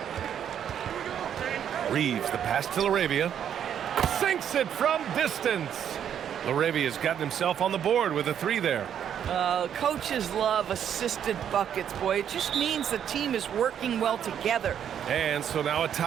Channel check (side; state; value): left; quieter; 9.1 dB